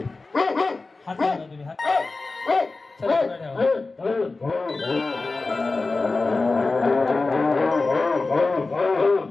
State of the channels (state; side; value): quieter; right; 3.6 dB